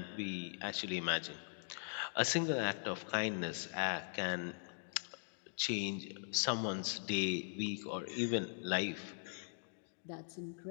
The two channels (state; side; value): silent; right; digital silence